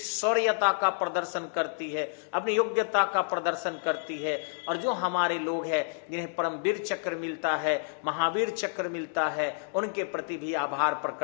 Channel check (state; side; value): silent; right; digital silence